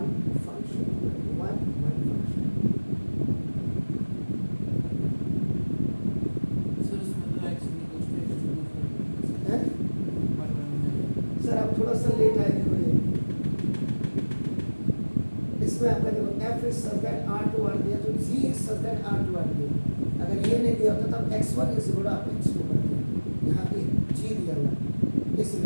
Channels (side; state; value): both; inverted; correlation -1.00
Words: function 1 function. Sir आप थोड़ा सा लेट आए थे. इसमें आपका देखो f is such that r to r दिया तो g is such that r to r दिया. अगर ये नहीं दिया होता तब x1 इज इक्वल टू आप x2 करते हैं. यहाँ पे g दिया हुआ